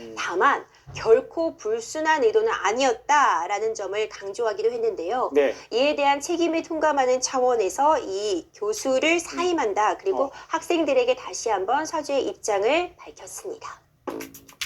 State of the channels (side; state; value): both; identical; correlation 1.00